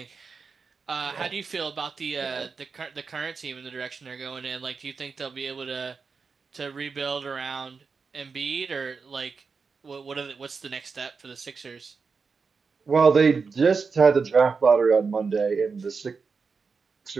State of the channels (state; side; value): quieter; left; 5.1 dB